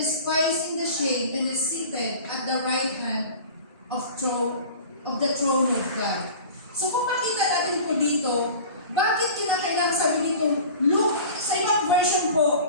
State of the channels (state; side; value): inverted; both; correlation -0.40